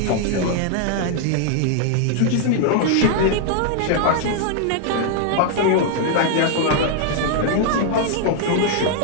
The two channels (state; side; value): different; both; correlation 0.00